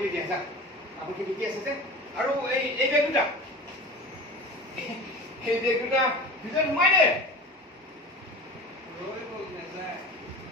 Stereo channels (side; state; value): both; normal; correlation 0.35